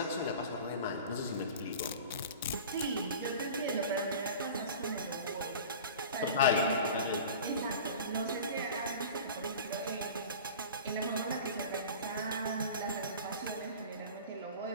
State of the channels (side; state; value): both; inverted; correlation -0.37